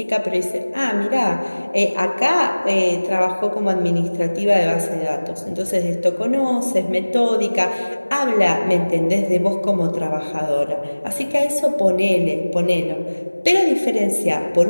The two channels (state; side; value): inverted; both; correlation -1.00